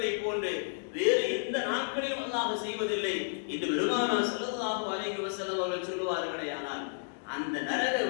போன்று வேறு எந்த நாட்களிலும் அல்லாஹ் செய்வதில்லை என்று பெருமானார் ஸல்லல்லாஹு அலைஹி வஸல்லம் அவர்கள் சொல்லுவார்களேயானால், அந்த நரக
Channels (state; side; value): silent; right; digital silence